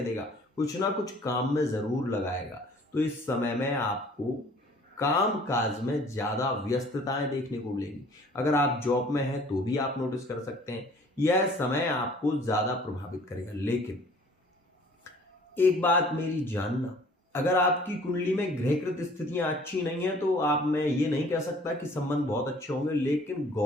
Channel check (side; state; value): both; normal; correlation 0.53